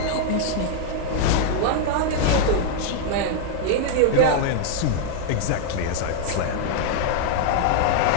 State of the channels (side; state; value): both; different; correlation -0.01